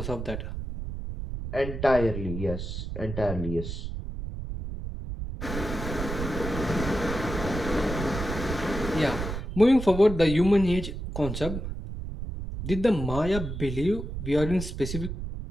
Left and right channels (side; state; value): right; noise; rumble, 6 dB below the sound